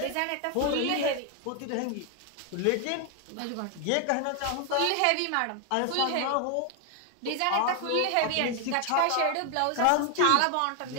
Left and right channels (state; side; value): different; both; correlation 0.00